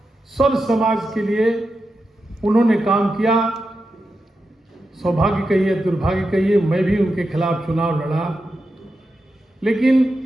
सर्व समाज के लिए उन्होंने काम किया। सौभाग्य कहिए, दुर्भाग्य कहिए, मैं भी उनके खिलाफ चुनाव लड़ा, लेकिन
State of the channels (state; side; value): normal; both; correlation 0.89